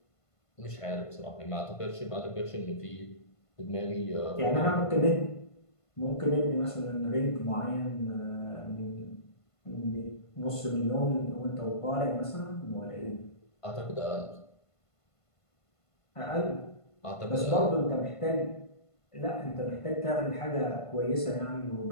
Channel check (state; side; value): late; right; 1.5 ms